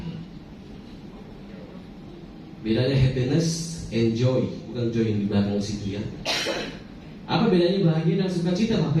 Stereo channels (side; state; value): both; identical; correlation 1.00